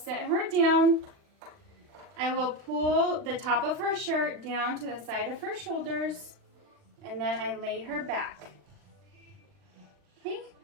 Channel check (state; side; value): late; left; 40 ms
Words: her down. I will pull the top of her shirt down to the side of her shoulders, and then I lay her back. Okay,